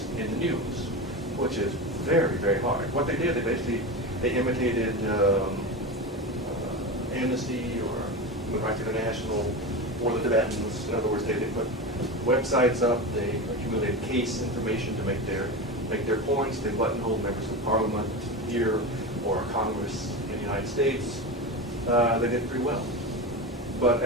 in the news, which is very, very hard. What they did, they imitated Amnesty or Human Rights International or the Tibetans. In other words, they put websites up, they accumulated case information to make their points. They buttonholed members of Parliament here or Congress in the United States. They did pretty well. But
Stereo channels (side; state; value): both; normal; correlation 0.23